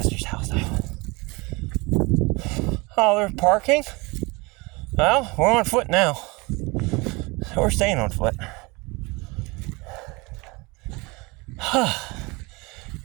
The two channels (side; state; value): left; quieter; 25.9 dB